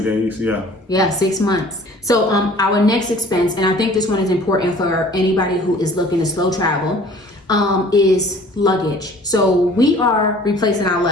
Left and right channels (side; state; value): both; normal; correlation 0.50